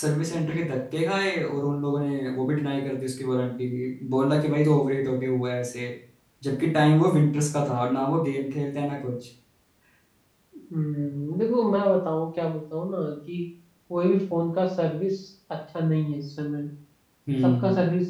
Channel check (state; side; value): identical; both; correlation 1.00